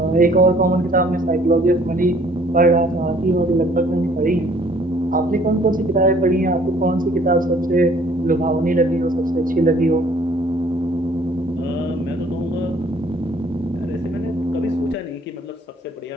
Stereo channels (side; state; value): both; normal; correlation 0.58